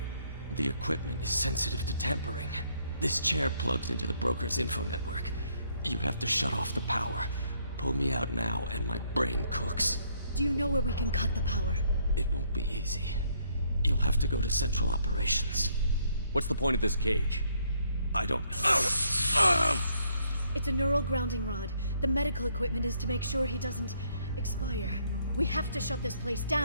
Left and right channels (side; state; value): both; inverted; correlation -0.69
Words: The equipment is sensitive to tampering. This chair plugs into the broker's info network. You have to shut off the power. Pull me out now and my brain cooks. Do you know where we can cut the power? It won't be easy. You'll have to go to Central Operations. What's the point of this cage? I don't... It's a neural grounding rod. The medical equipment is to make sure he doesn't expire. We have to shut this place